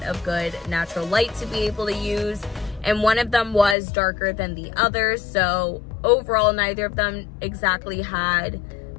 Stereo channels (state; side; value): drops out; right; at 3.8 s